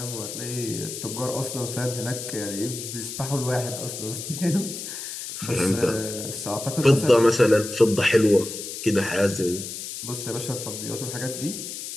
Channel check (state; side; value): noise; left; hiss, 8 dB below the sound